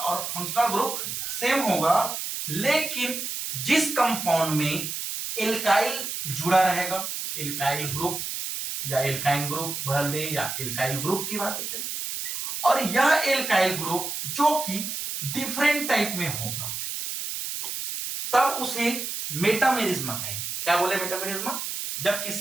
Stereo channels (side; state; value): right; noise; hiss, 5 dB below the sound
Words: फंक्शनल ग्रुप सेम होगा, लेकिन जिस कंपाउंड में एल्काइल जुड़ा रहेगा, एल्काइल ग्रुप या एल्काइन ग्रुप भर दे या एल्काइल ग्रुप की बात करें, और यह एल्काइल ग्रुप जो कि डिफरेंट टाइप में होगा, तब उसे मेटामेरिज्मा कहेंगे। क्या बोले मेटामेरिज्मा? जब